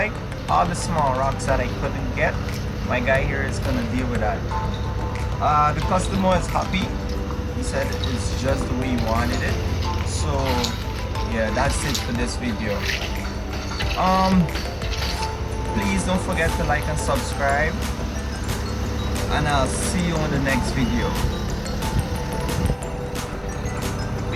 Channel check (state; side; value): identical; both; correlation 1.00